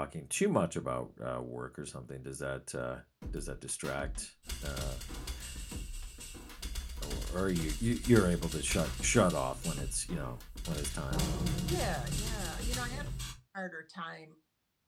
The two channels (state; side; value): identical; both; correlation 1.00